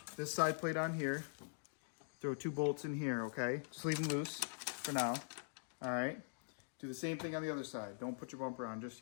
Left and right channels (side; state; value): right; silent; digital silence